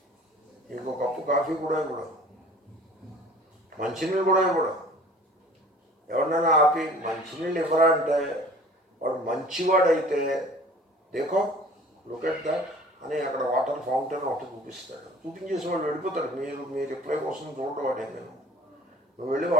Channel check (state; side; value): normal; both; correlation 0.48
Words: మీకు ఒక కప్పు కాఫీ కూడా ఇవ్వడం, మంచినీళ్ళు కూడా ఇవ్వడం. ఎవరినైనా ఆపి మంచినీళ్ళు ఇవ్వరా అంటే వాడు మంచివాడైతే దేకో లుక్ ఎట్ దాట్ అని అక్కడ వాటర్ ఫౌంటైన్ ఒకటి చూపిస్తాడు. చూపించేసి వాళ్ళు వెళ్ళిపోతాడు. మీ రిప్లై కోసం చూడటం వాడే. నువ్వు వెళ్ళి